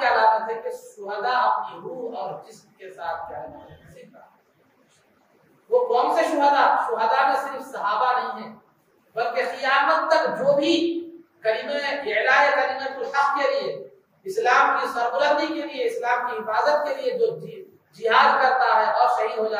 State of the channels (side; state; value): both; identical; correlation 1.00